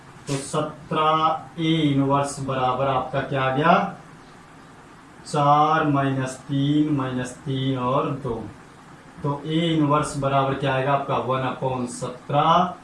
तो 17 ए इनवर्स बराबर आपका क्या आ गया 4 माइनस 3 और 2। तो ए इनवर्स बराबर क्या आएगा आपका 1/17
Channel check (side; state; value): both; identical; correlation 1.00